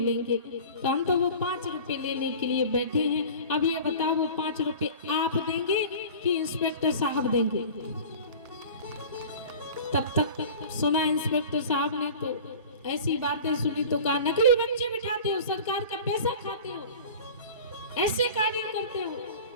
तो हम तो वो 5 रुपए लेने के लिए बैठे हैं। अब ये बताओ, वो 5 रुपए आप देंगे कि इंस्पेक्टर साहब देंगे? तब तक सुना इंस्पेक्टर साहब ने तो ऐसी बातें सुनी तो कहा, नकली बच्चे बिठाते हो, सरकार का पैसा खाते हो, ऐसे कार्य करते हो,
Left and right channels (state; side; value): inverted; both; correlation -0.39